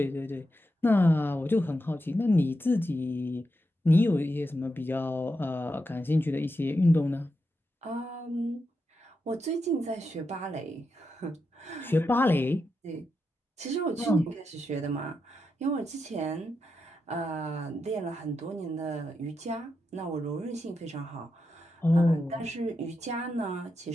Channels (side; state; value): both; normal; correlation 0.86